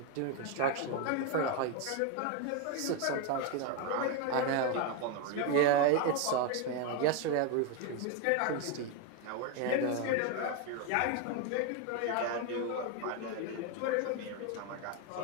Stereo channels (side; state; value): both; different; correlation 0.02